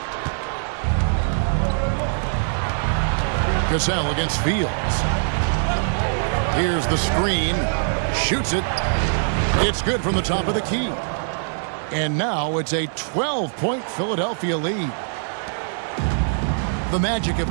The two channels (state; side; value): silent; left; digital silence